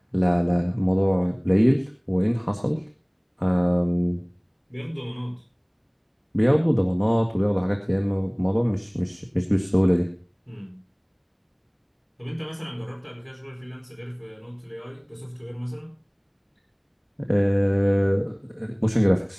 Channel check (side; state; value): both; identical; correlation 1.00